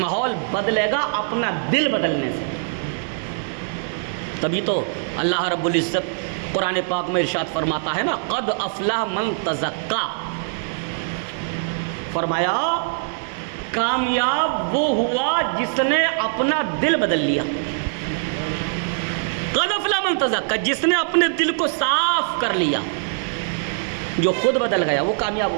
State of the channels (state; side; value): silent; left; digital silence